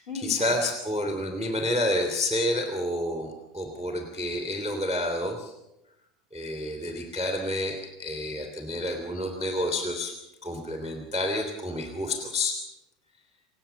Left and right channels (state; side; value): normal; both; correlation 0.49